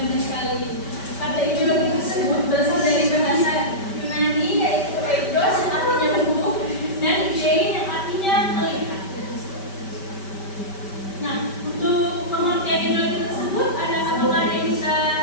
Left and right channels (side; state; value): right; late; 5.1 ms